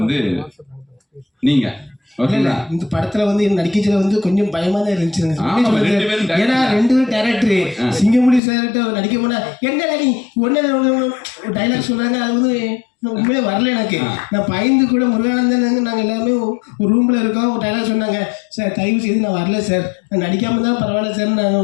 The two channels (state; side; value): drops out; right; at 8.4 s